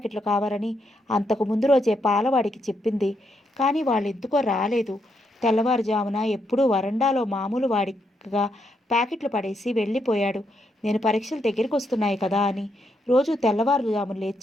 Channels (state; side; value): normal; both; correlation 0.79